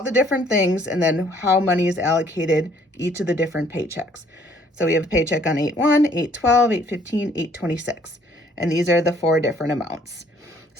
the different things, and then how money is allocated each of the different paychecks. So we have a paycheck on 8/1, 8/12, 8/15, 8/26. And these are the 4 different amounts.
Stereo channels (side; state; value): both; normal; correlation 0.62